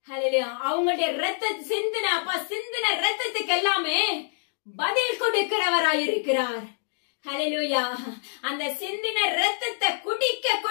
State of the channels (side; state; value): right; silent; 61 dB below the other